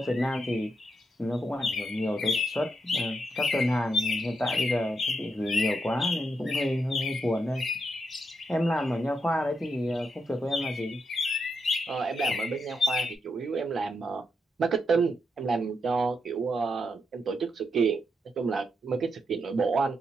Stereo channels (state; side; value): normal; both; correlation 0.82